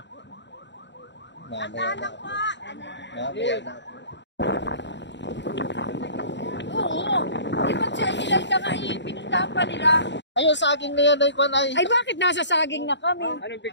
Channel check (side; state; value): right; late; 0.52 ms